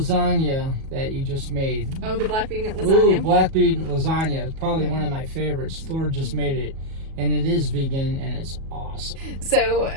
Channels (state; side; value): late; left; 37 ms